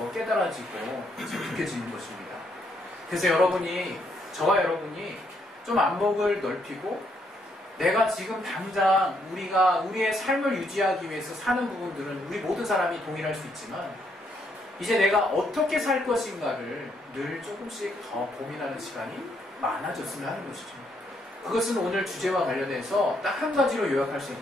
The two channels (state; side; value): normal; both; correlation 0.74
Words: 깨달아지고 느껴지는 것입니다. 그래서 저와 여러분이 좀 안목을 넓히고 내가 지금 당장 우리의 삶을 유지하기 위해서 사는 부분들은 우리 모든 사람이 동일할 수 있지만 이제 내가 어떻게 살 것인가를 늘 조금씩 더 고민하는 시간이 많아졌으면 하는 것이죠. 그것은 오늘 주제와 관련해서 딱 한 가지로 요약할 수